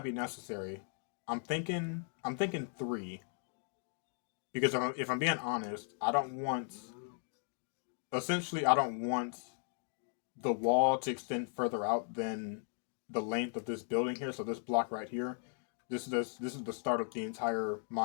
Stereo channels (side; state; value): right; silent; 53 dB below the other